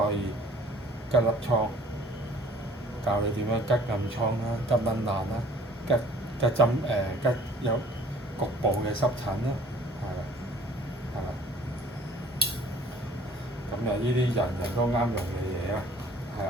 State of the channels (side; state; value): both; normal; correlation 0.54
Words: 可以吉粒瘡，教你點樣吉暗瘡啦、吉蚊爛啦、吉針吉有局部嘅濕疹啦，係啦，係啦。咁啊，呢啲人人都啱用嘅嘢啦，係